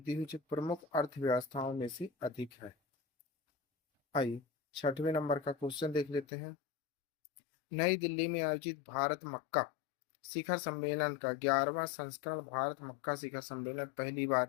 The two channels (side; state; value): right; drops out; at 6.2 s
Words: हुई जो प्रमुख अर्थव्यवस्थाओं में से अधिक है। आइए 6वें नंबर का क्वेश्चन देख लेते हैं। नई दिल्ली में आयोजित भारत मक्का शिखर सम्मेलन का 11वां संस्करण भारत मक्का शिखर सम्मेलन पहली